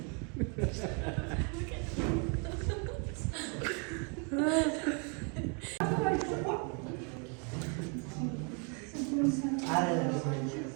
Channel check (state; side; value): quieter; left; 36.6 dB